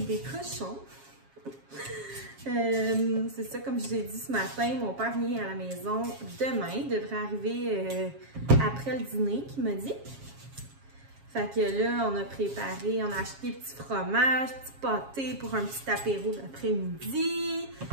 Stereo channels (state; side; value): late; left; 7.3 ms